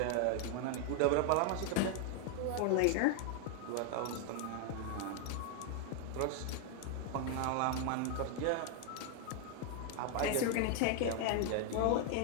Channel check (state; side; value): different; both; correlation 0.00